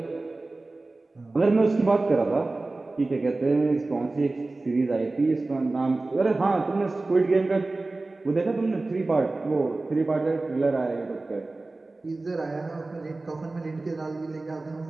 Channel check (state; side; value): quieter; left; 3.2 dB